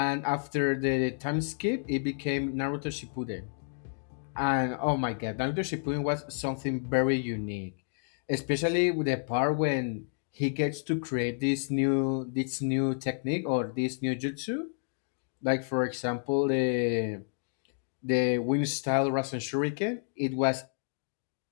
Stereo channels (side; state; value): right; silent; digital silence